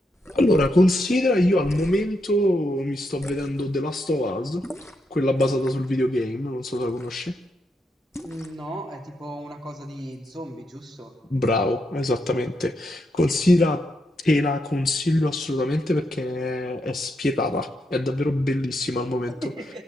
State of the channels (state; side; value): normal; both; correlation 0.81